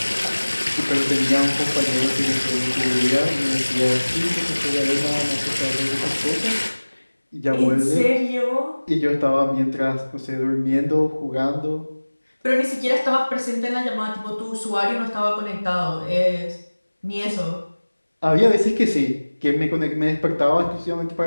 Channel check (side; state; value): both; inverted; correlation -1.00